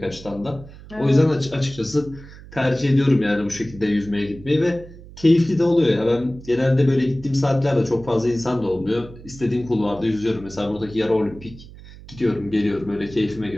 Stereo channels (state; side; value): noise; right; hum, 18 dB below the sound